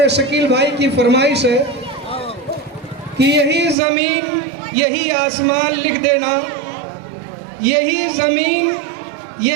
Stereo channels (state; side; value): drops out; left; at 3.8 s